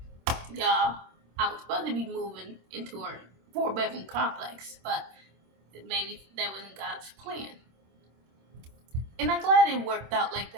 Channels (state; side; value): late; left; 26 ms